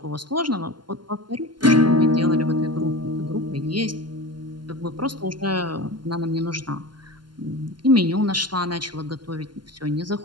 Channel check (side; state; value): left; late; 0.71 ms